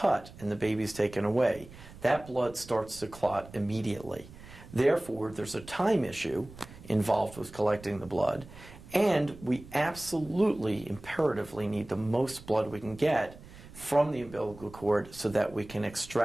and the baby is taken away, that blood starts to clot immediately. Therefore, there's a time issue involved with collecting the blood, and we absolutely, imperatively need the most blood we can get from the umbilical cord so that we can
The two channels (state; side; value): noise; right; rumble, 18 dB below the sound